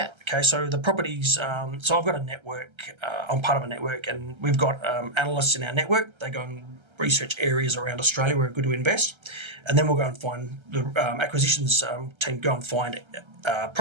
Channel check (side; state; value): left; late; 1.3 ms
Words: Okay, so the properties, so I've got a network, I'm part of a network, and we've got analysts in our network. They go and research areas around Australia where we're good to invest, and then we'll go and find the acquisitions team go and find